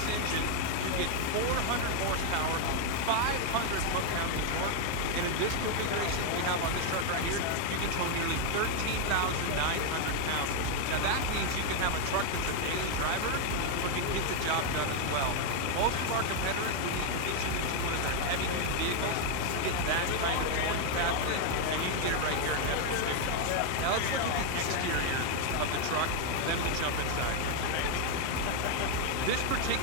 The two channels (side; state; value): both; different; correlation 0.01